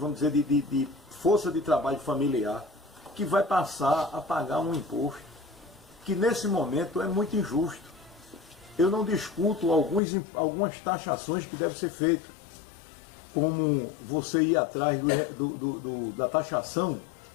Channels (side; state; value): right; drops out; at 10.0 s